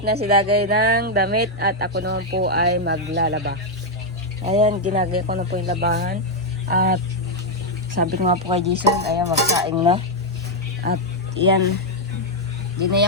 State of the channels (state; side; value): normal; both; correlation 0.00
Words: na si Dagay ng damit at ako naman po ay maglalaba. Ayan, ginagaya ko na po yung labahan. At sabi ko nga po kay Jason, ayan, magsaing na. At yan,